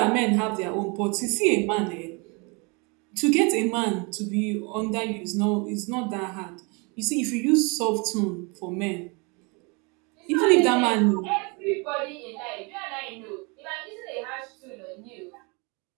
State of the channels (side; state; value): left; quieter; 30.5 dB